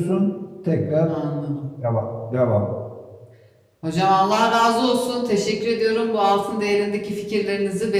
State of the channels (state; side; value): identical; both; correlation 1.00